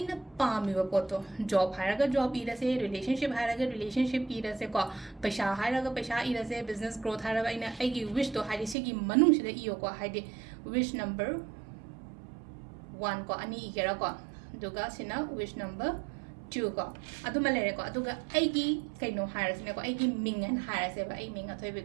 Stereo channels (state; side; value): drops out; left; at 8.8 s